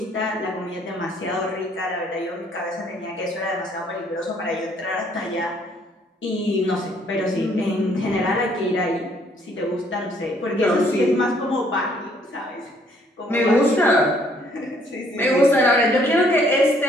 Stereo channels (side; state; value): both; normal; correlation 0.64